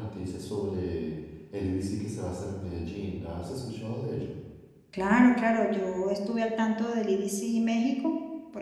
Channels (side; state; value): both; identical; correlation 1.00